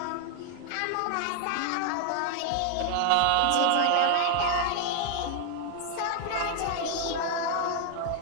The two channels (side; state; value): both; different; correlation 0.00